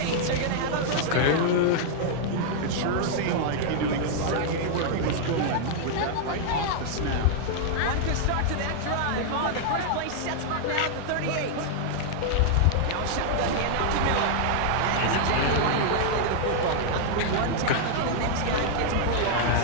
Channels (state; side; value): different; both; correlation -0.01